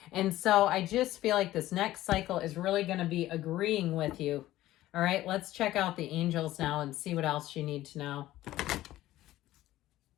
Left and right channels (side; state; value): right; quieter; 15.2 dB